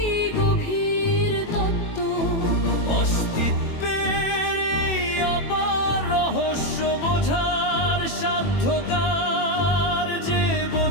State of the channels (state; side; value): late; right; 21 ms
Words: গভীর তত্ত্ব। অস্তিত্বের এই অপার রহস্য বোঝার সাধ্যকার, যে